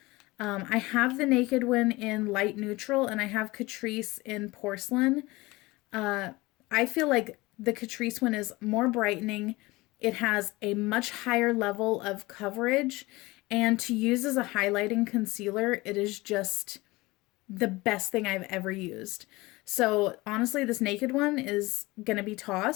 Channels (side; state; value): right; quieter; 21.5 dB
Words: I have the Naked one in light neutral, and I have Catrice in porcelain. I feel like the Catrice one is more brightening. It has a much higher level of coverage, and to use as a highlighting concealer, it is just the best thing I've ever used. So honestly, this Naked one is gonna be